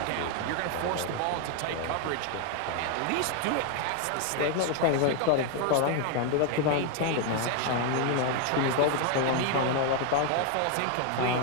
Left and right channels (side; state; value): both; different; correlation 0.01